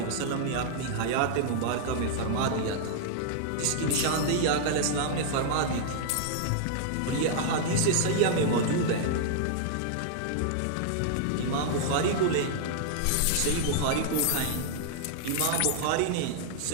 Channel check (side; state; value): both; different; correlation -0.01